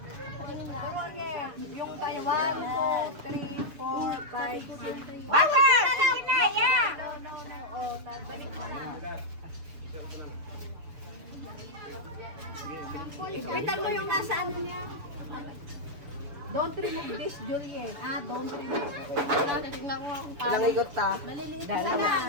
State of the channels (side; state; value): left; late; 7.0 ms